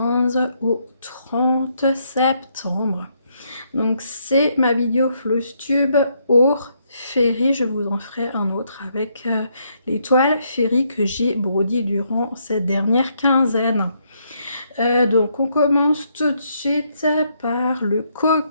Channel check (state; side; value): inverted; both; correlation -0.74